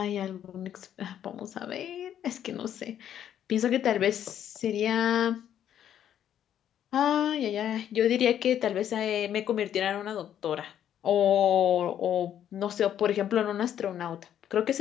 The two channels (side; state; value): right; quieter; 10.2 dB